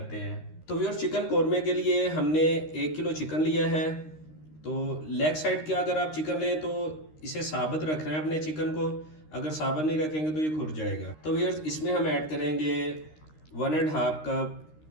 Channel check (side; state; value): right; late; 13 ms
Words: हैं। तो व्यूअर्स, चिकन कोरमे के लिए हमने 1 किलो चिकन लिया है। तो लेग साइड के अगर आप चिकन लें तो इसे साबित रखना है अपने चिकन को। अगर साबित नहीं रखेंगे तो ये खुर जाएगा। तो व्यूअर्स, इसमें हम ऐड करेंगे 1.5 कप